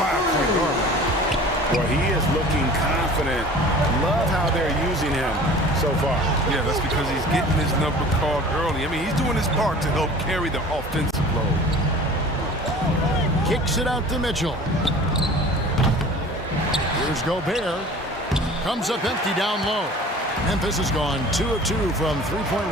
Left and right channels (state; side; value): normal; both; correlation 0.43